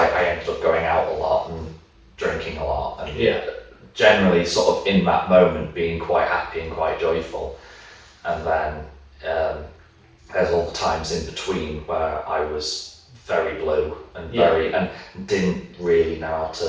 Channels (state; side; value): identical; both; correlation 1.00